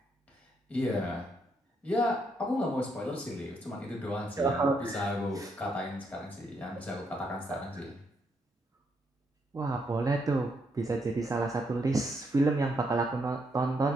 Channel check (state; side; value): normal; both; correlation 0.76